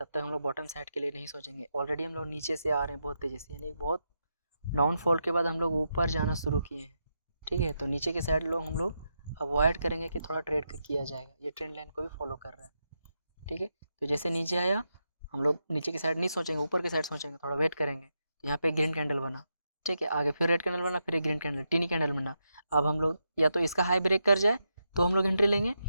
तक हम लोग बॉटम साइड के लिए नहीं सोचेंगे। ऑलरेडी हम लोग नीचे से आ रहे हैं बहुत तेज़ी से, यानी बहुत डाउनफॉल के बाद हम लोग ऊपर जाना शुरू किए हैं, ठीक है। तो नीचे के साइड लोग हम लोग अवॉइड करेंगे कि थोड़ा ट्रेड किया जाएगा, ये ट्रेंड लाइन को भी फॉलो कर रहा है, ठीक है। तो जैसे नीचे आया हम लोग नीचे की साइड नहीं सोचेंगे, ऊपर की साइड सोचेंगे, थोड़ा वेट करेंगे। तो यहाँ पे ग्रीन कैंडल बना, ठीक है, आगे फिर रेड कैंडल बना, फिर एक ग्रीन कैंडल टीनी कैंडल बना। अब हम लोग या तो इसका हाई ब्रेक कर जाए तो हम लोग एंट्री लेंगे,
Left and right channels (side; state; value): both; inverted; correlation -0.84